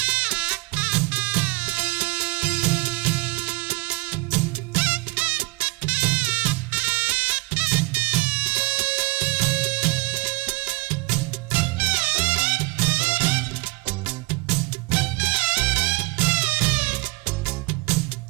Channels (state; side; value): quieter; left; 23.6 dB